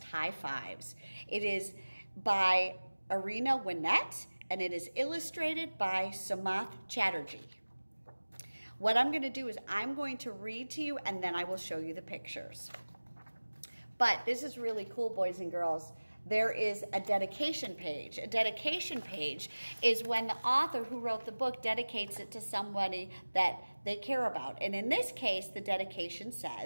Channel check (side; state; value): both; inverted; correlation -1.00